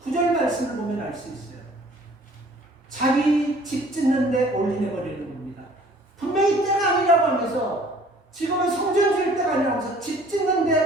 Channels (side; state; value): both; normal; correlation 0.53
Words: 9절 말씀을 보면 알 수 있어요. 자기 집 짓는데 올인해버리는 겁니다. 분명히 때가 아니라고 하면서 지금은 성전 지을 때가 아니라고 하면서 집